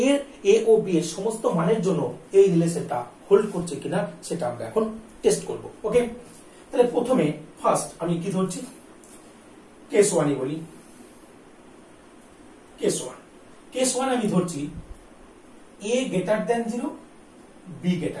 a ও b এর সমস্ত মানের জন্য এই রিলেশনটা হোল্ড করছে কিনা সেটা আমরা এখন টেস্ট করব। ওকে, তাহলে প্রথমে ফার্স্ট আমি কি ধরছি, কেস 1 বলি। কেস 1 আমি ধরছি a greater than 0, b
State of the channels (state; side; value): identical; both; correlation 1.00